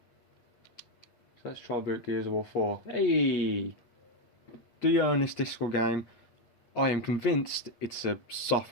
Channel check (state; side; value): late; right; 8.4 ms